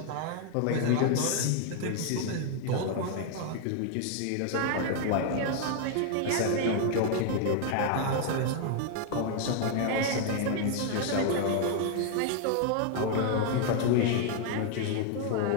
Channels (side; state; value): both; different; correlation 0.00